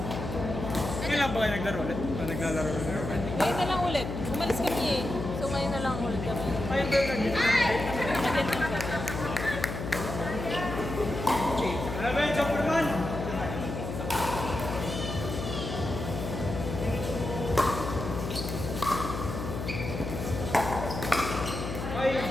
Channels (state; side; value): noise; left; hum, 5 dB below the sound